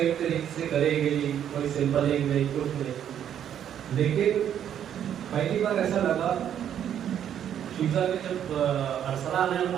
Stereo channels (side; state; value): left; quieter; 9.7 dB